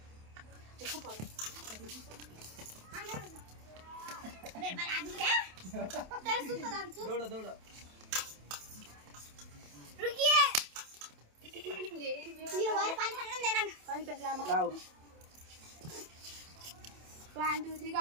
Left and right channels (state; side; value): late; left; 27 ms